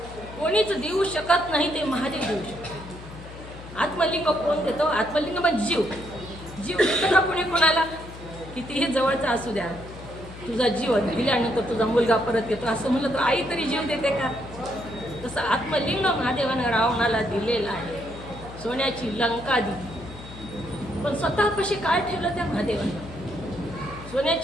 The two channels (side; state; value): left; noise; hum, 15 dB below the sound